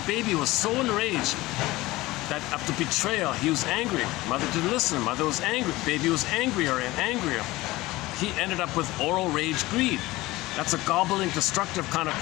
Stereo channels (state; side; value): quieter; right; 19.2 dB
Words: baby was so enraged that after betrayal, he was angry. Mother didn't listen. Mother was angry. Baby was angrier and angrier. He ended up with oral rage greed. That's a gobbling, destructive kind of